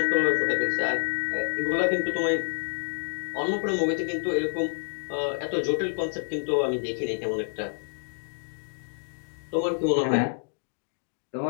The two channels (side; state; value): right; silent; 59 dB below the other